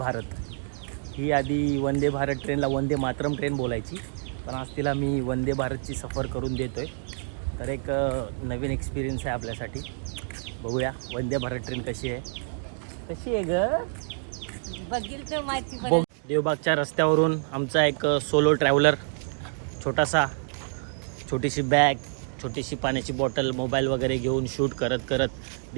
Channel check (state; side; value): silent; left; digital silence